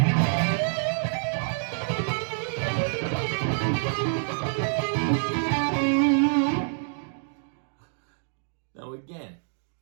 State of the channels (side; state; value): left; silent; digital silence